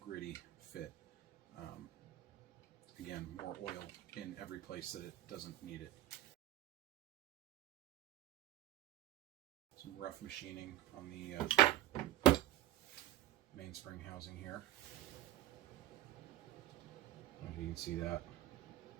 fit. Again, more oil in every place that it doesn't need it. Some rough machining on the mainspring housing here. I don't know if you can see that.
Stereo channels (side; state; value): left; quieter; 13.8 dB